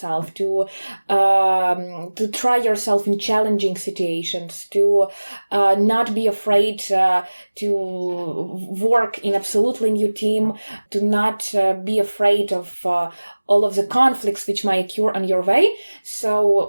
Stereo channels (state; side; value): inverted; both; correlation -1.00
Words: to try yourself in challenging situations, to not be afraid to work in absolutely new team, to not be afraid of all of the conflicts which might occur on your way.